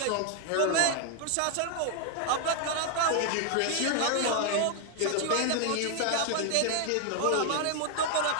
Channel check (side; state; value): both; different; correlation 0.00